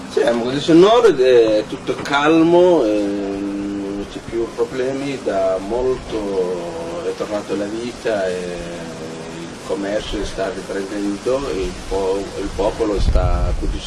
Sì, a Mogadiscio Nord è tutto calmo, non c'è più problemi, da molto è tornata la vita, il commercio sta riprendendo, il popolo sta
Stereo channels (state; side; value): identical; both; correlation 1.00